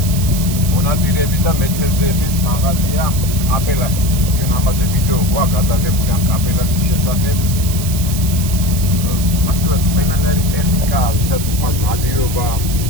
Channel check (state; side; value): noise; right; hiss, 8 dB below the sound